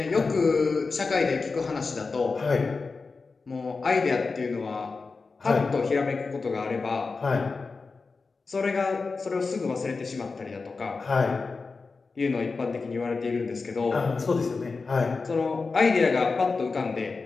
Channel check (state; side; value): quieter; right; 4.3 dB